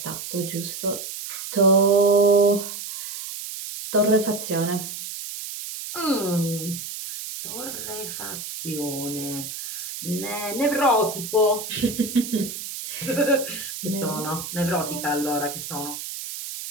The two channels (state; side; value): noise; right; hiss, 8 dB below the sound